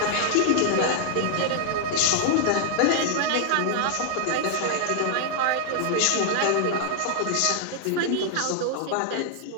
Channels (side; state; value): both; different; correlation -0.01